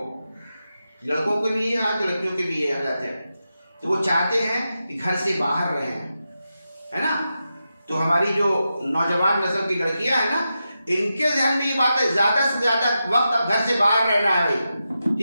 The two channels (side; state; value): both; inverted; correlation -0.89